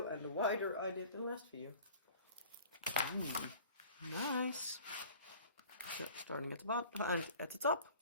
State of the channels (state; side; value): inverted; both; correlation -0.48